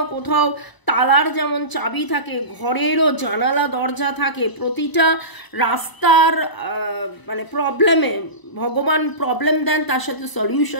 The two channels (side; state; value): right; late; 1.0 ms